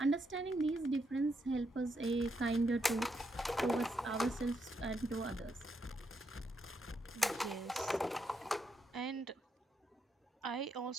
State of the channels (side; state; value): both; normal; correlation 0.80